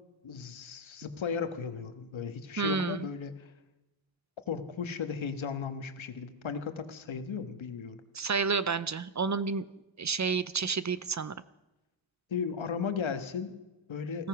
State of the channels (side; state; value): both; normal; correlation 0.00